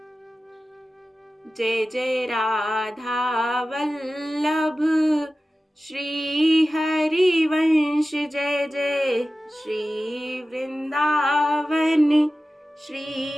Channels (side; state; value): both; normal; correlation 0.95